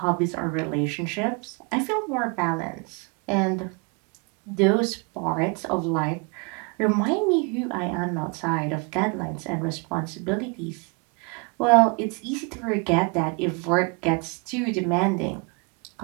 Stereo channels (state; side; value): quieter; left; 33.0 dB